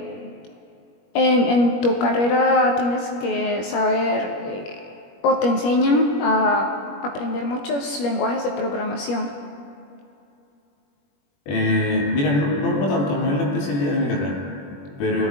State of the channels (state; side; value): late; right; 21 ms